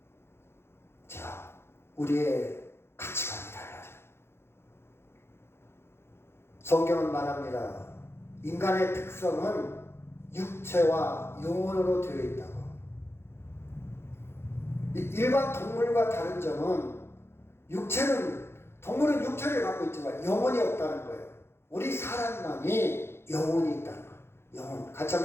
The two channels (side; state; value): right; late; 0.12 ms